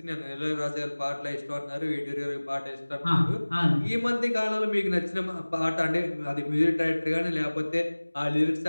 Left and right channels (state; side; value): inverted; both; correlation -1.00